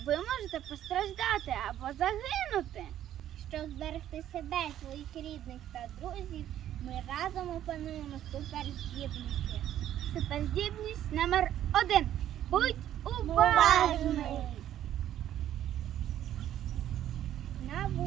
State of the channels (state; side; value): quieter; left; 11.6 dB